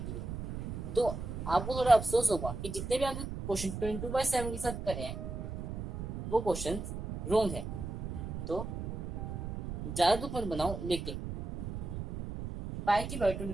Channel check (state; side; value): noise; right; rumble, 6 dB below the sound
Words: है। तो आपको थोड़ा अफसोस होगा कि जितने भी आपने क्वेश्चन 22/7 के साथ करे हैं वो क्वेश्चन रॉन्ग है। तो ज्यादा दुख मत बनाओ, लेकिन पाई की वैल्यू